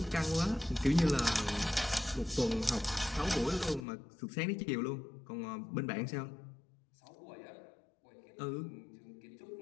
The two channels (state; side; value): drops out; right; at 3.9 s